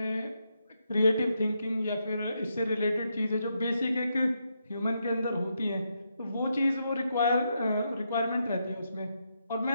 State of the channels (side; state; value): both; inverted; correlation -0.81